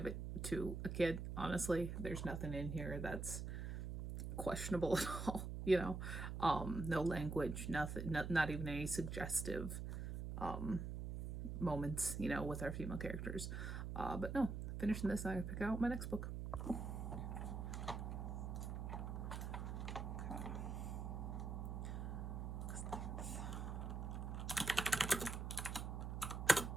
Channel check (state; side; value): noise; right; hum, 4 dB below the sound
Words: it to a kid, honestly. There's nothing in here that's questionable at all, you know. No language, nothing, not even any suggestive moments, you know, with our female characters. But no, finishing this, I pick out my next book.